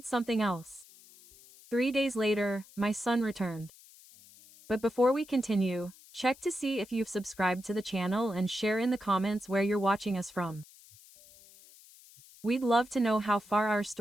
something else. 3 days later, my son returned. But before we continue, check to see if you've subscribed to the channel and share in the comments where you're watching us from. We'd love to know how far our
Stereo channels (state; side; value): noise; left; hiss, 23 dB below the sound